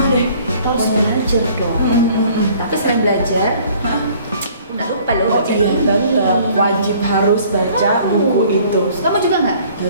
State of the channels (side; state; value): both; inverted; correlation -0.55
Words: deh. Kita harus belajar dong. Tapi selain belajar, Nggak lupa loh. Oh iya, tetap wajib harus baca buku itu. Kamu juga nggak?